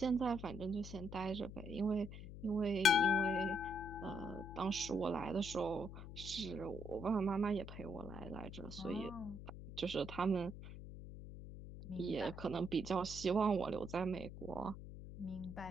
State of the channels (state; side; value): noise; left; hum, 11 dB below the sound